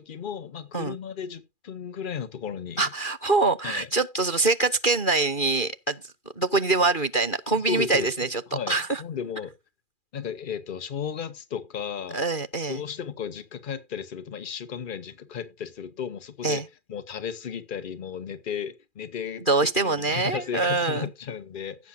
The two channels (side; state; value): right; late; 2.4 ms